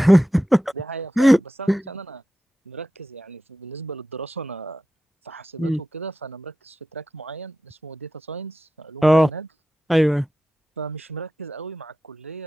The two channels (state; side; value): normal; both; correlation 0.92